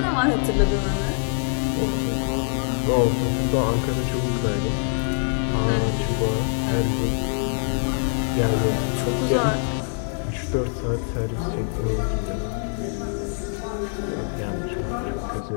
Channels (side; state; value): right; silent; 59 dB below the other